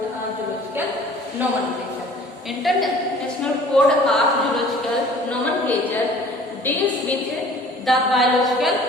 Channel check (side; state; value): both; normal; correlation 0.49